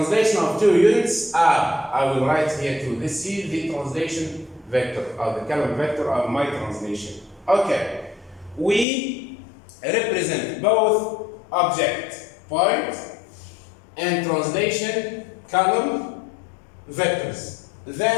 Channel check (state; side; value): drops out; right; at 8.8 s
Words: of 2 units up. I will write here 2. This is the translation vector, or the column vector of my translation. Okay. We represent both object, point, and translation column vectors.